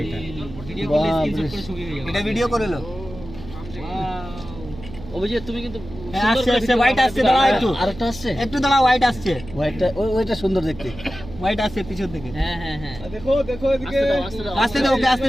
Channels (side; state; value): right; noise; hum, 14 dB below the sound